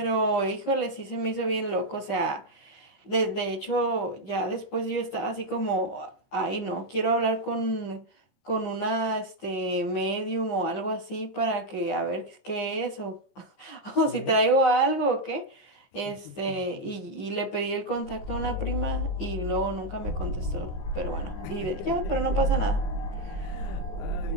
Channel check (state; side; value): late; right; 15 ms